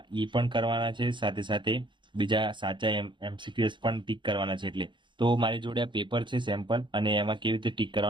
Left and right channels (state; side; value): late; left; 0.23 ms